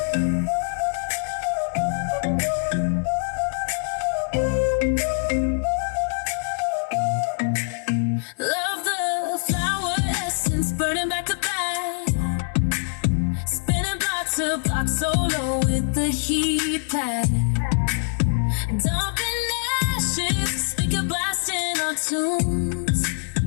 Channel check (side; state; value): right; silent; 63 dB below the other